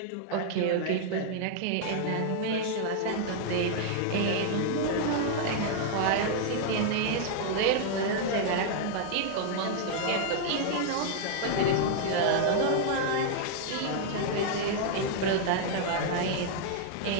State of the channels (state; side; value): different; both; correlation -0.01